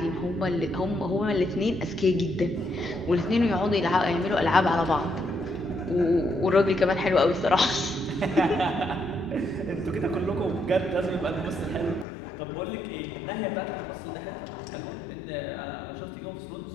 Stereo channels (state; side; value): drops out; right; at 12.1 s